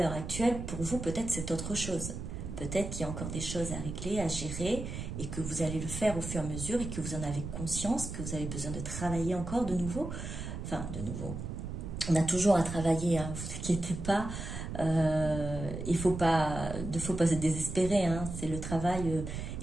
actuelle, pour vous, peut-être c'est autre chose. Peut-être qu'il y a encore des choses à régler, à gérer, et que vous allez le faire au fur et à mesure, et que vous en avez conscience, que vous avez besoin de travailler encore de nouveau. Enfin, de nouveau, on a toujours à travailler, hein, vous inquiétez pas. Il ne faut pas se désespérer, hein, c'est le travail,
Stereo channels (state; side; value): noise; right; rumble, 7 dB below the sound